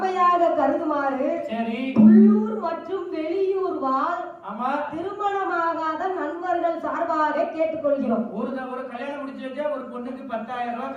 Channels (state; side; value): identical; both; correlation 1.00